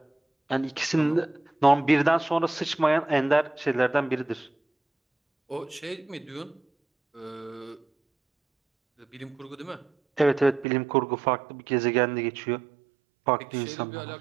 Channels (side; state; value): left; drops out; at 10.7 s